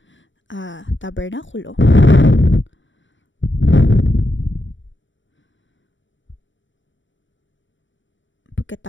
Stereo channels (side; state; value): right; late; 0.55 ms